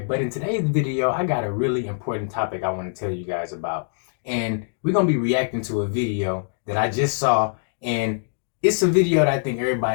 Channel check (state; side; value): silent; right; digital silence